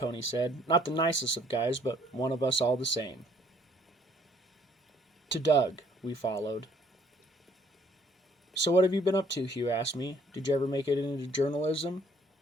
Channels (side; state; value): both; normal; correlation 0.62